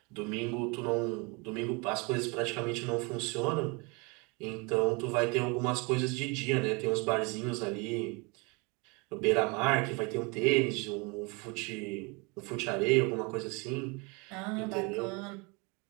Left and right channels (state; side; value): quieter; left; 29.4 dB